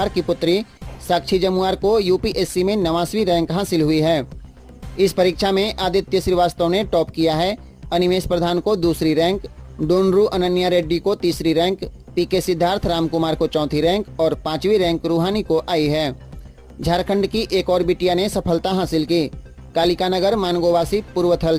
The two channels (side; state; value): both; identical; correlation 1.00